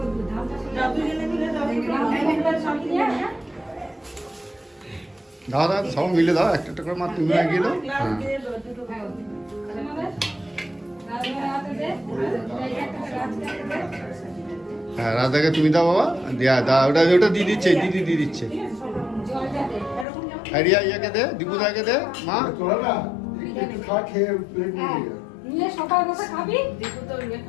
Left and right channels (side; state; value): right; drops out; at 20.1 s